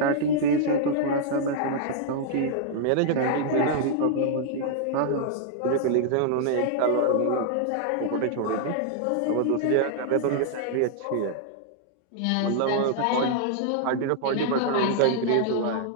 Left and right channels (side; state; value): both; different; correlation -0.01